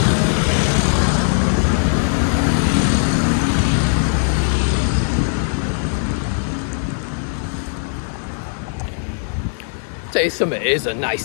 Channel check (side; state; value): right; silent; digital silence